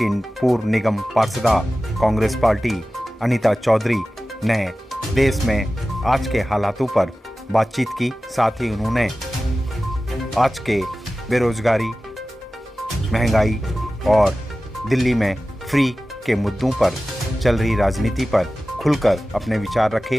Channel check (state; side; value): normal; both; correlation 0.95